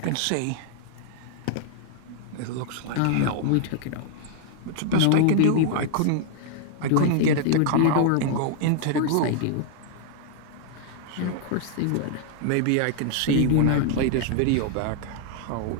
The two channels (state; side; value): different; both; correlation 0.00